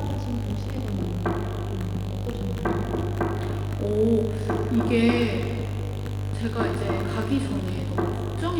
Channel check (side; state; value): both; identical; correlation 1.00